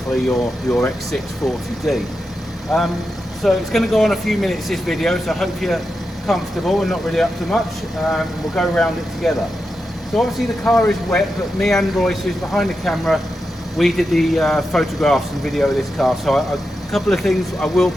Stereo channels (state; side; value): normal; both; correlation 0.88